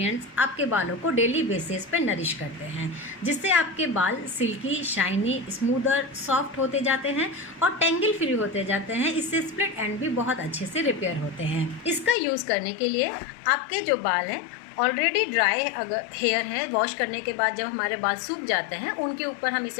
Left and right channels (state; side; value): drops out; right; at 12.2 s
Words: आपके बालों को डेली बेसिस पे नरिश करते हैं, जिससे आपके बाल सिल्की, शाइनी, स्मूदर, सॉफ्ट होते जाते हैं और टेंगल फ्री होते जाते हैं। इससे स्प्लिट एंड भी बहुत अच्छे से रिपेयर होते हैं। इसका यूज़ करने के लिए आपके जो बाल हैं ऑलरेडी ड्राई अगर हेयर है, वॉश करने के बाद जब हमारे बाल सूख जाते हैं उनके ऊपर हम